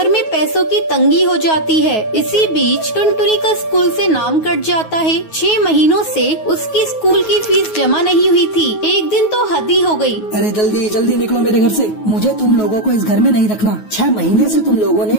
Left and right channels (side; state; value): right; late; 9.4 ms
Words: में पैसों की तंगी हो जाती है। इसी बीच टुनटुनी का स्कूल से नाम कट जाता है। 6 महीनों से उसकी स्कूल की फीस जमा नहीं हुई थी। एक दिन तो हद ही हो गई। अरे जल्दी जल्दी निकलो मेरे घर से। मुझे तुम लोगों को इस घर में नहीं रखना। 6 महीने से तुम लोगों ने